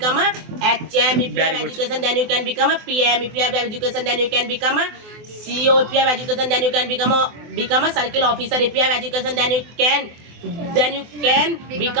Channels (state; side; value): late; left; 24 ms